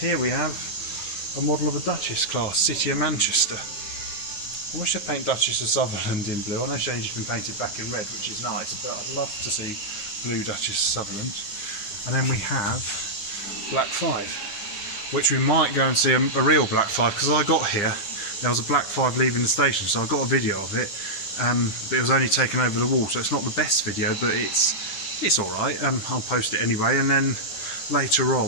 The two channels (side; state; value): right; late; 10 ms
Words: we have a model of a Duchess class, City of Manchester. I wish they'd paint Duchess of Sutherland in blue. I know she's just been painted back in red, which is nice, but I'd love to see blue Duchess of Sutherland. And then we have Black 5, which we might go and see a real Black 5, because I got here, there was a Black 5 leaving the station, so I got a video of it, but it was only taken over the wall, so it's not the best video, but it's alright. I'll post it anyway, and then later